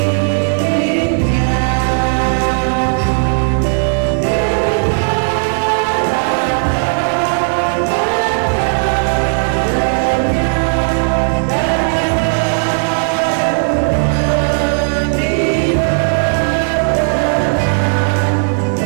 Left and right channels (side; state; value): left; silent; 60 dB below the other